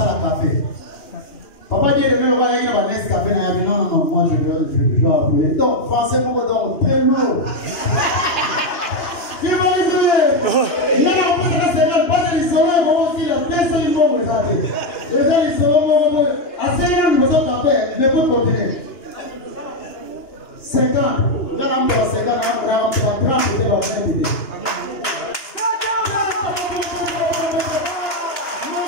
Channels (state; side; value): late; right; 2.9 ms